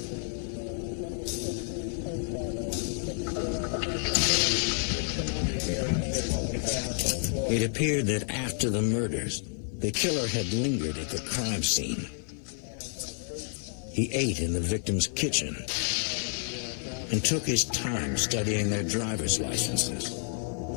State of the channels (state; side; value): silent; right; 55 dB below the other